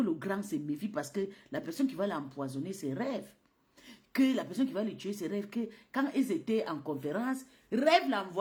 le grand se méfie parce que la personne qui va l'empoisonner, c'est Rêve. Que la personne qui va le tuer, c'est Rêve. Que quand ils étaient en conférence, Rêve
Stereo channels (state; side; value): identical; both; correlation 1.00